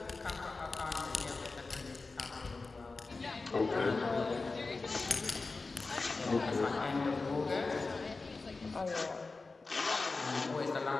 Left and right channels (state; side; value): quieter; right; 3.8 dB